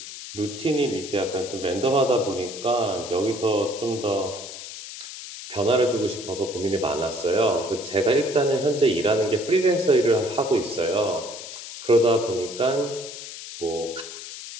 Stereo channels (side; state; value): left; noise; hiss, 11 dB below the sound